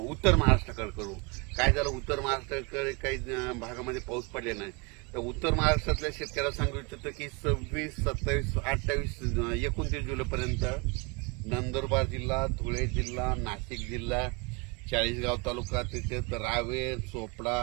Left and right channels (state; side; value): quieter; left; 29.7 dB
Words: महाराष्ट्राकडे करू. काय झालं, उत्तर महाराष्ट्राकडे काही भागामध्ये पाऊस पडले नाही. तर उत्तर महाराष्ट्रातल्या शेतकऱ्याला सांगू इच्छितो की 26, 27, 28, 29 जुलैपर्यंत नंदुरबार जिल्हा, धुळे जिल्हा, नाशिक जिल्हा, चाळीसगाव तालुका, तिथे रावेर, चोपडा,